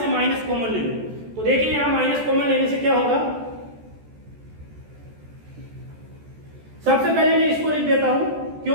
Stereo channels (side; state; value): left; late; 14 ms